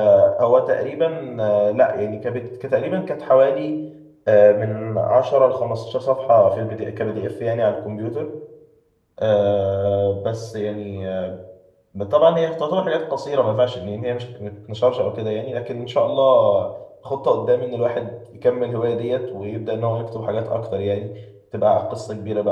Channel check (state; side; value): identical; both; correlation 1.00